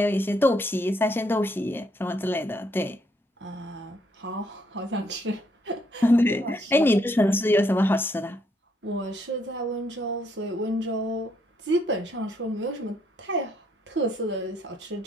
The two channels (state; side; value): normal; both; correlation 0.71